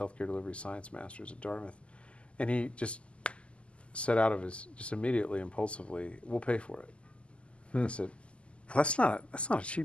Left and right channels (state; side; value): late; right; 0.055 ms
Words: delivery science master's at Dartmouth, and he just said out of his, just immediately, impulsively, we'll pay for it. I said, well, that's not a